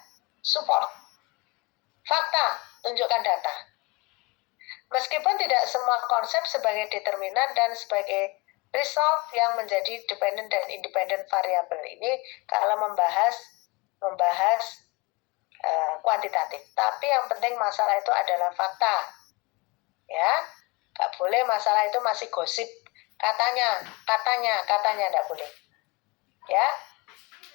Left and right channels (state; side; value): quieter; right; 26.3 dB